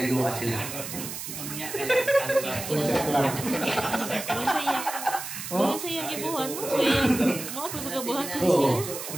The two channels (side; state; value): right; noise; hiss, 8 dB below the sound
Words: sila. Doon sa iyang ibuhan mo. So iyang mga pagbuhat ko siya.